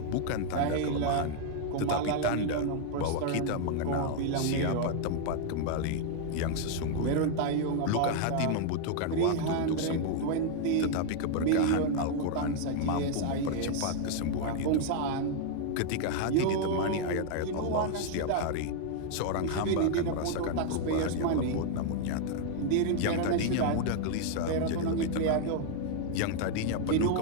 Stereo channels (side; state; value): both; different; correlation 0.00